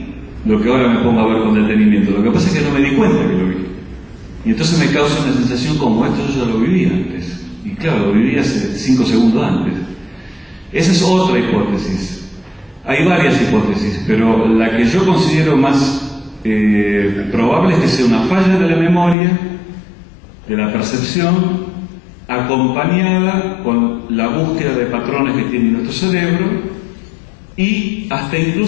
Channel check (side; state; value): right; drops out; at 19.2 s